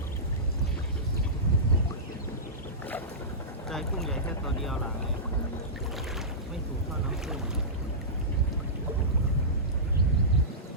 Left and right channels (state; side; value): normal; both; correlation -0.18